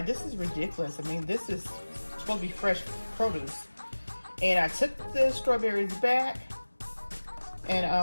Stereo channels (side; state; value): both; inverted; correlation -1.00